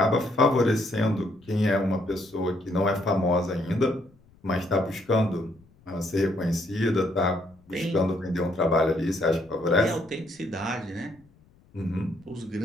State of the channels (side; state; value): left; noise; rumble, 30 dB below the sound